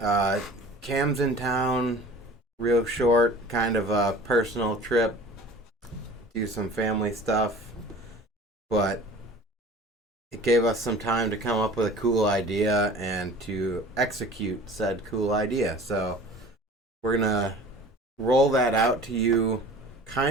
everybody? Cam's in town, real short, kind of a personal trip, do some family stuff, but it gave us some time to come up with a cool idea and to execute said cool idea. So we're gonna roll that out to you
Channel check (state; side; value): normal; both; correlation 0.43